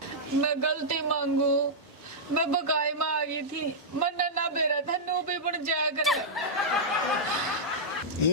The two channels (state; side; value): normal; both; correlation -0.10